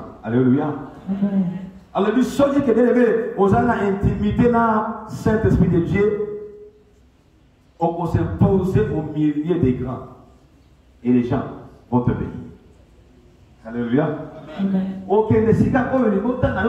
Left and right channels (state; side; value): identical; both; correlation 1.00